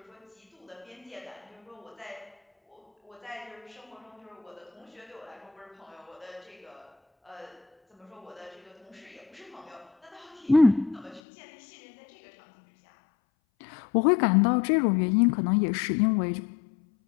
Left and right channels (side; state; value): right; drops out; at 11.2 s